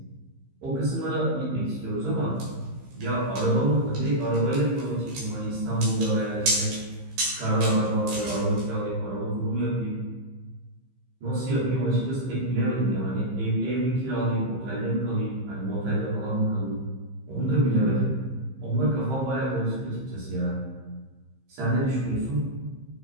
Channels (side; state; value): left; late; 15 ms